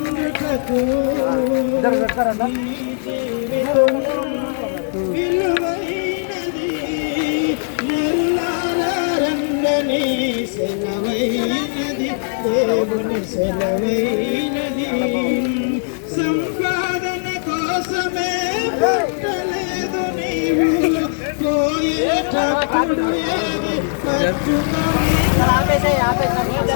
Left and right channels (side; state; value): right; silent; digital silence